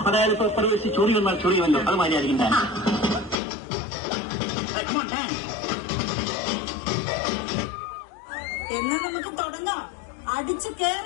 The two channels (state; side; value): drops out; right; at 3.4 s